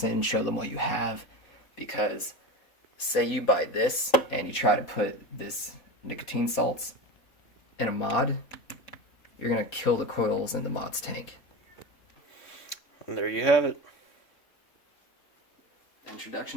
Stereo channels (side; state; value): right; late; 4.2 ms